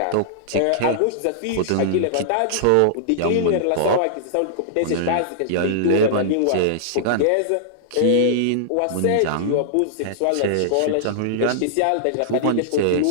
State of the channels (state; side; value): different; both; correlation -0.01